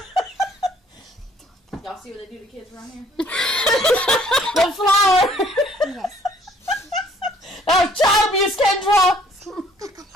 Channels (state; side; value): normal; both; correlation 0.60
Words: Y'all see what they do to kids around here? The flower. Yes. Oh, child abuse, Kendra.